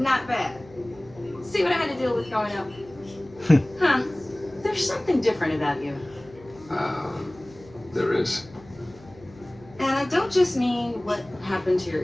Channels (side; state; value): left; noise; hum, 22 dB below the sound